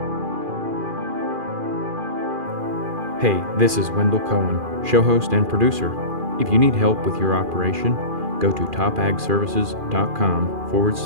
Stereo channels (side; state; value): left; late; 2.4 ms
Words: Hey, this is Wendell Cohen, show host and producer. If you need help with your operation, go to